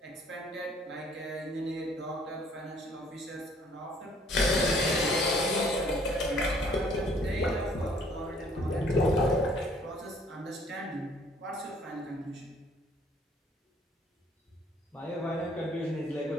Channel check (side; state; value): both; normal; correlation 0.60